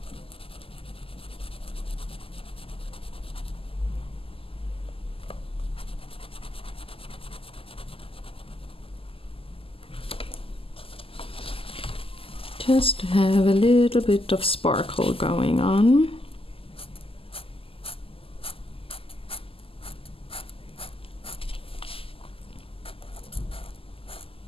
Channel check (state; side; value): late; right; 0.26 ms